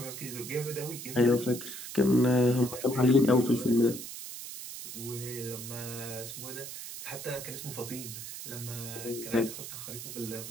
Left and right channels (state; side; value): noise; right; hiss, 9 dB below the sound